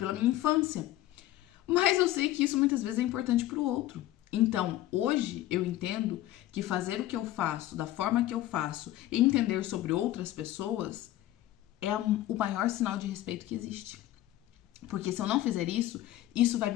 minha infância. Mas eu sei que isso muitas vezes é importante pro outro. Então, hoje eu entendo que fazer o que eu faço, da forma que eu faço, e entender sobre outras pessoas é o maior sinal de respeito que existe. Porque se eu não fizer isso, isso vai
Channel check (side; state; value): right; quieter; 14.6 dB